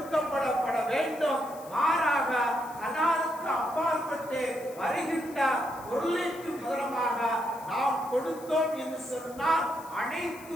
வேண்டும். மாறாக ஹலாலுக்கு அப்பாற்பட்டு வருகின்ற பொருளுக்கு முதலமாக நாம் கொடுத்தோம் என்று சொன்னால் அனைத்து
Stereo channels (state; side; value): noise; left; hiss, 20 dB below the sound